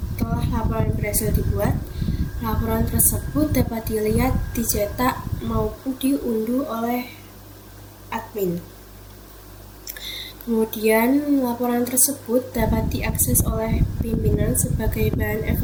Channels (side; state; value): both; identical; correlation 1.00